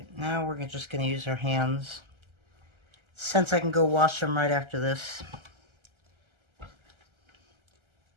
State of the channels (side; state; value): left; late; 1.3 ms